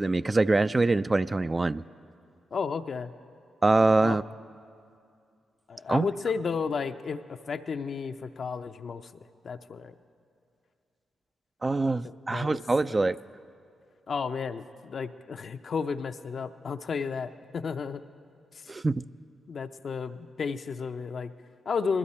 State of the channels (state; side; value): normal; both; correlation 0.91